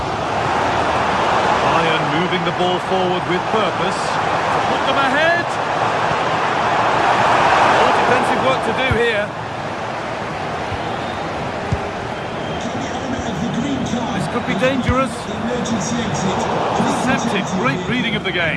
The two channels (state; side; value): identical; both; correlation 1.00